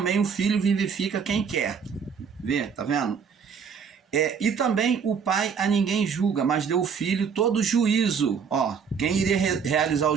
o Filho vivifica quem quer. Vê, tá vendo? E também o Pai a ninguém julga, mas deu ao Filho todo juízo. Ó, quem iria realizar o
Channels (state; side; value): quieter; left; 6.4 dB